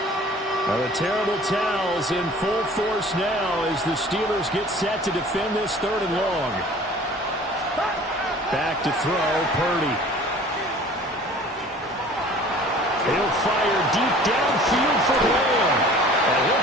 Now the terrible towels in full force now as the Steelers get set to defend this 3rd and long. Back to throw, Purdy. He'll fire deep downfield for Lamb. And he'll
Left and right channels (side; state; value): both; normal; correlation 0.47